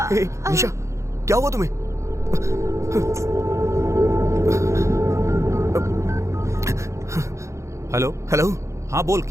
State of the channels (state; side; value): late; left; 0.14 ms